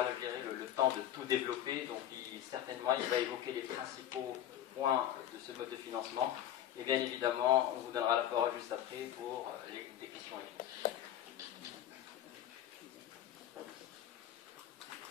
le temps de tout développer. Donc certainement, il va évoquer les principaux points de ce mode de financement. Et bien évidemment, on vous donnera la parole juste après pour des questions-réponses.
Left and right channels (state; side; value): quieter; right; 11.3 dB